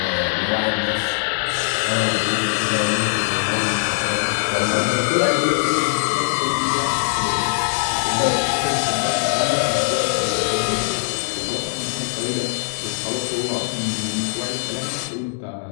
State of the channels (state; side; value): silent; right; 65 dB below the other